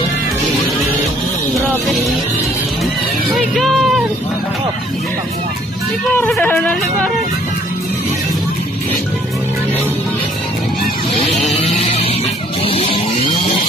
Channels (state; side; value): normal; both; correlation 0.61